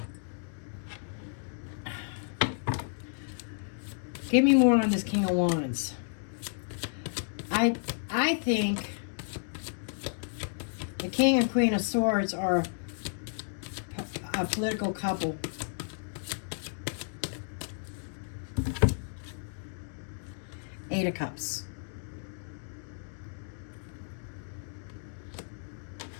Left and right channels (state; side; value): silent; right; digital silence